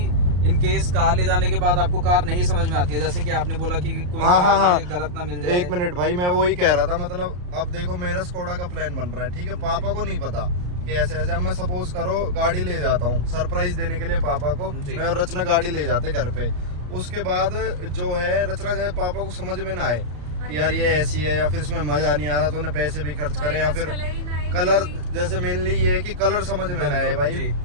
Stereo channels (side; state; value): left; late; 34 ms